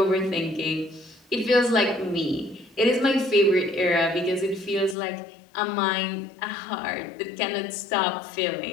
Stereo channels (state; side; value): drops out; right; at 5.0 s